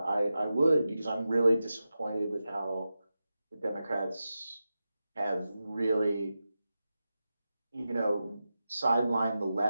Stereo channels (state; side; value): inverted; both; correlation -0.92